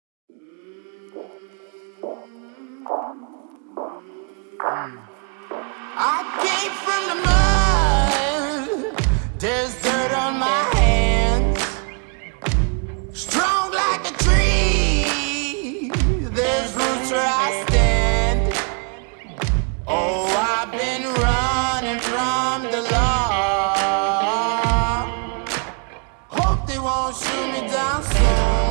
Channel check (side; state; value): left; quieter; 39.4 dB